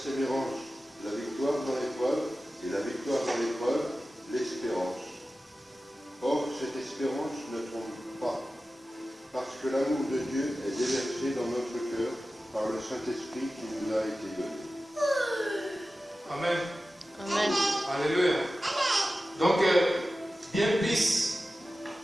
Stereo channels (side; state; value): both; normal; correlation 0.95